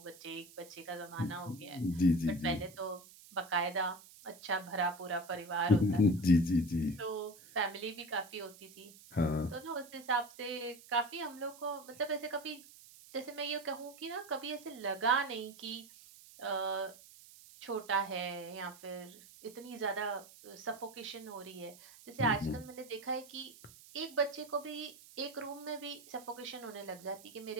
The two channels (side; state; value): right; noise; hiss, 20 dB below the sound